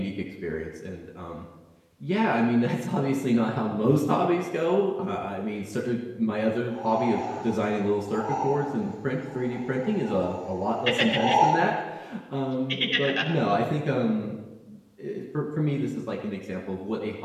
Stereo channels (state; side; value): identical; both; correlation 1.00